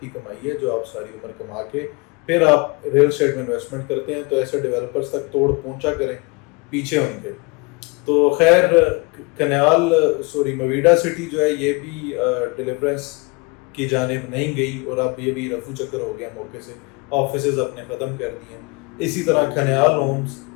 کی کمائی ہے جو آپ ساری عمر کما کے پھر آپ ریل اسٹیٹ میں انویسٹمنٹ کرتے ہیں. تو ایسے ڈیولپرز تک توڑ پہنچا کریں پیچھے ان کے. تو خیر مویڈا سٹی جو ہے یہ بھی ڈیلیورنس کی جانب نہیں گئی، اور اب یہ بھی رفو چکر ہو گیا موقع سے. آفیسز اپنے ختم کر دیے. اسی طرح کھنیال ہومز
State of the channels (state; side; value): quieter; right; 28.3 dB